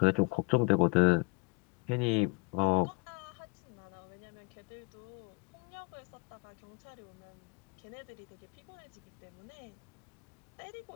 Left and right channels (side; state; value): right; quieter; 28.8 dB